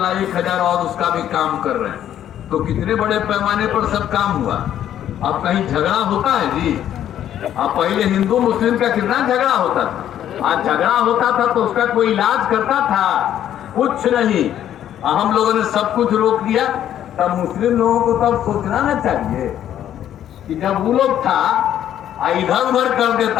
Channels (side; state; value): right; quieter; 10.9 dB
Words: 1,000 और उसका भी काम कर रहे हैं। तो कितने बड़े पैमाने पर सब काम हुआ। अब कहीं झगड़ा होता है जी, अब पहले हिंदू मुस्लिम का कितना झगड़ा होता था, आज झगड़ा होता था तो उसका कोई इलाज करता था, कुछ नहीं। हम लोगों ने सब कुछ रोक दिया। तब मुस्लिम लोगों को तब सोचना ना चाहिए कि जब वो लोग था इधर उधर कर